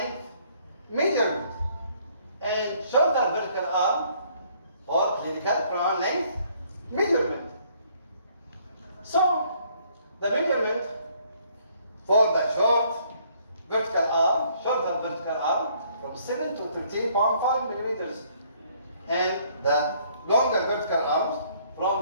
measurement, and shorter vertical arm for clinical crown length measurement. So, the measurement for the shorter vertical arm from 7 to 13.5 millimeters, and the longer vertical arms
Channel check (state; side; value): inverted; both; correlation -0.64